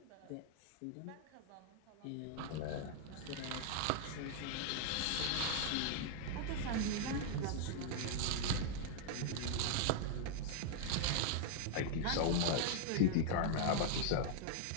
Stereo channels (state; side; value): different; both; correlation -0.01